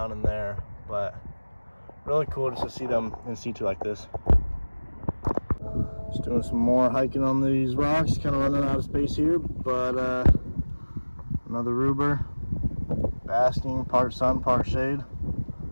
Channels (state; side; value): inverted; both; correlation -1.00